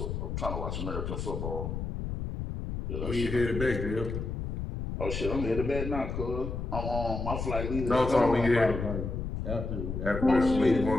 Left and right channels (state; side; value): noise; left; rumble, 4 dB below the sound